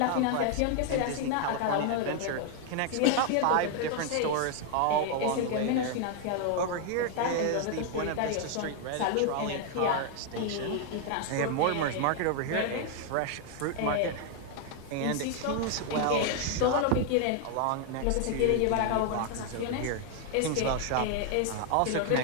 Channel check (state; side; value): different; both; correlation 0.00